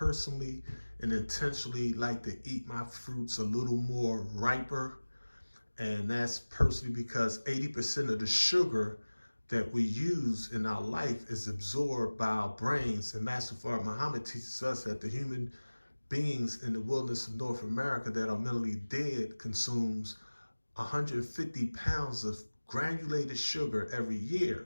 and intentionally like to eat my fruits a little more riper. And that's personally because 80% of the sugar that we use in our life is absorbed by our brains. And Master Fard Muhammad teaches us that the human beings in the wilderness of North America that are mentally dead consumes 150 pounds of granulated sugar every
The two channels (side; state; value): both; inverted; correlation -1.00